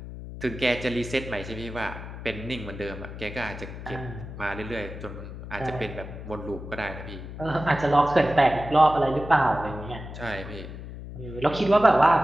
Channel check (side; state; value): left; noise; hum, 11 dB below the sound